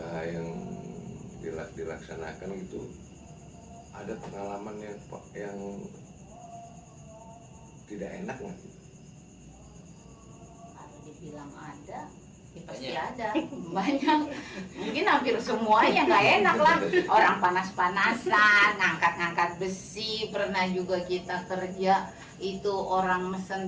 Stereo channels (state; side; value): identical; both; correlation 1.00